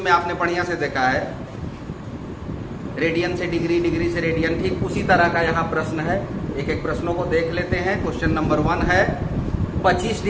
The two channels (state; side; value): identical; both; correlation 1.00